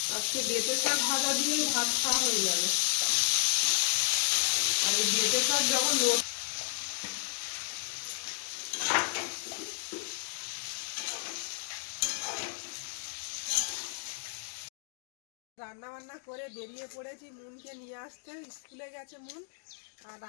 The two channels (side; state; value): right; silent; digital silence